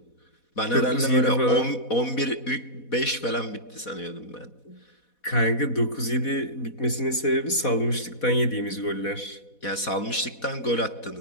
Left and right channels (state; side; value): late; right; 4.1 ms